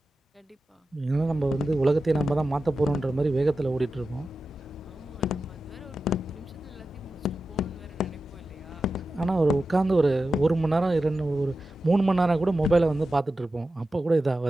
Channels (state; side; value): normal; both; correlation 0.92